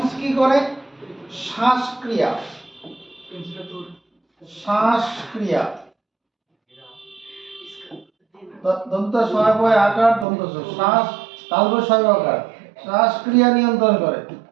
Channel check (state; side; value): drops out; left; at 10.2 s